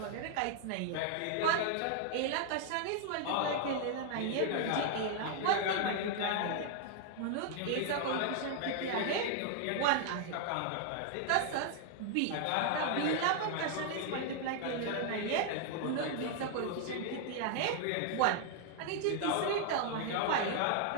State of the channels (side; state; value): both; different; correlation 0.00